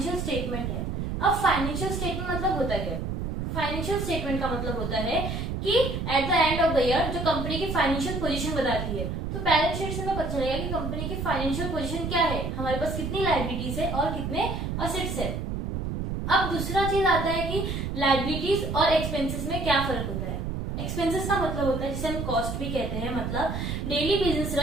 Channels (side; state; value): right; noise; rumble, 3 dB below the sound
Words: स्टेटमेंट है। अब फाइनेंशियल स्टेटमेंट मतलब होता क्या? फाइनेंशियल स्टेटमेंट का मतलब होता है कि eight the end of the year जो कंपनी की फाइनेंशियल पोजीशन बताती है। तो बैलेंस शीट से हमें पता चलेगा कि कंपनी की फाइनेंशियल पोजीशन क्या है, हमारे पास कितनी लायबिलिटीज है और कितने असेट्स है। अब दूसरा चीज आता है कि लायबिलिटीज और एक्सपेंसेस में क्या फर्क होता है। एक्सपेंसेस का मतलब होता है जिसे हम कॉस्ट भी कहते हैं, मतलब डेली बिजनेस